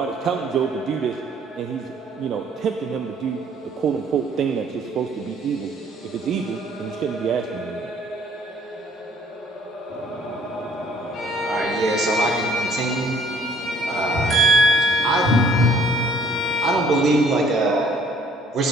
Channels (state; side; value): normal; both; correlation 0.59